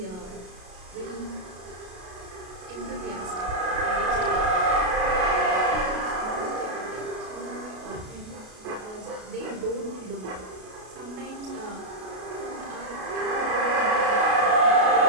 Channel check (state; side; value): late; left; 33 ms